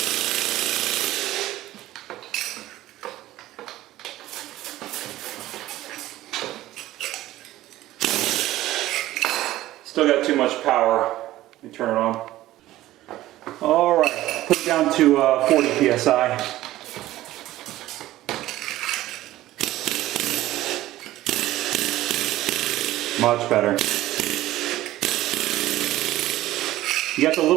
still got too much power. Let me turn it on. Alright, put it down to 40 psi. Much better. You got the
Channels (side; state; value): left; quieter; 15.4 dB